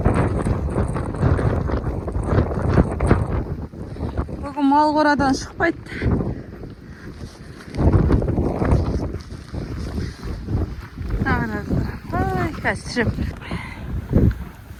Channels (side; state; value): both; identical; correlation 1.00